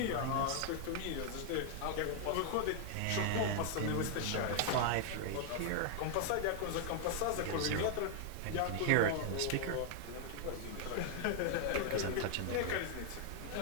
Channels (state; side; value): different; both; correlation -0.01